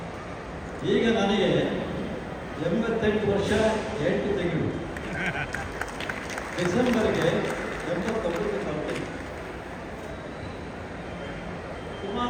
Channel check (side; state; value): both; identical; correlation 1.00